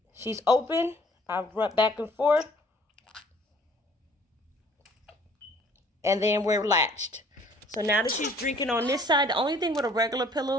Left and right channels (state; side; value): normal; both; correlation 0.56